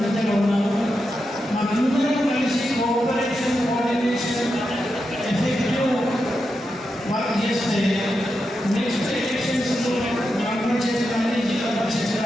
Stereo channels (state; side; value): normal; both; correlation 0.87